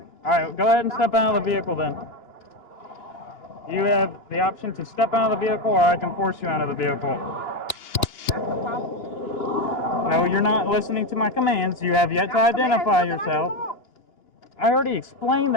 Alright, go ahead and step out of the vehicle then. You have the option to step out of the vehicle or I can force you out of the vehicle. No, you're not listening to my commands. You have yet to identify yourself. I already explained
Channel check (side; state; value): right; late; 2.8 ms